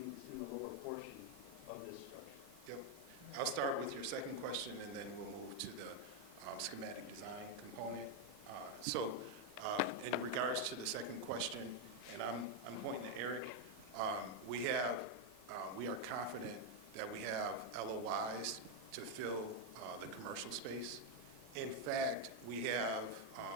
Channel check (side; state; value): left; late; 8.9 ms